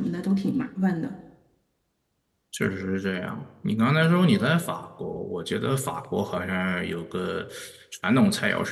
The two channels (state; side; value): identical; both; correlation 1.00